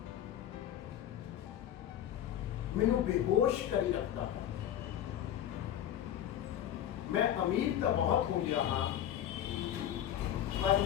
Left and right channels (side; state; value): right; quieter; 10.9 dB